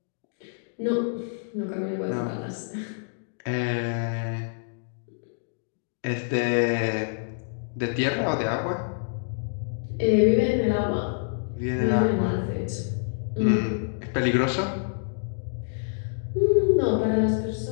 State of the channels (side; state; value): right; silent; digital silence